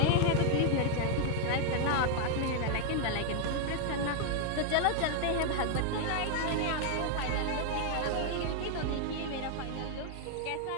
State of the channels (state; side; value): different; both; correlation 0.00